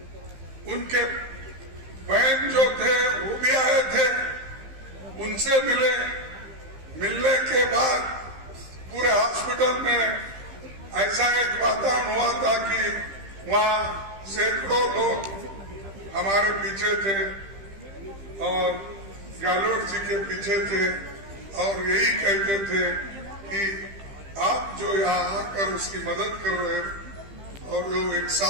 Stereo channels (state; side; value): late; left; 15 ms